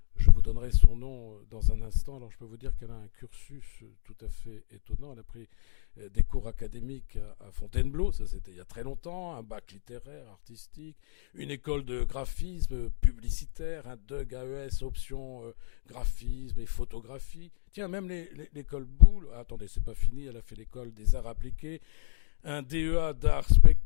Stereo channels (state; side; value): silent; right; digital silence